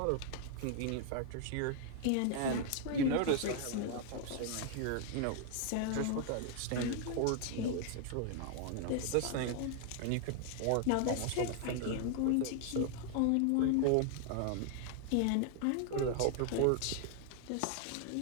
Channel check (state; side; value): different; both; correlation 0.00